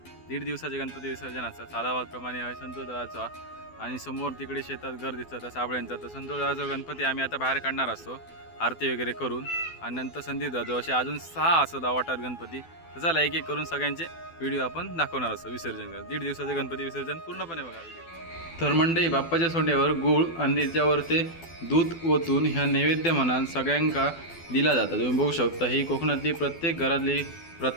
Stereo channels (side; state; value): right; late; 12 ms